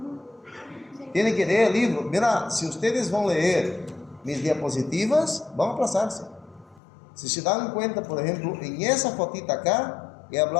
Tienen que leer el libro. Mira, si ustedes van a leer mis diapositivas, van a aplazarse. Si se dan cuenta, por ejemplo, en esa fotita acá, he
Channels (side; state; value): right; drops out; at 6.8 s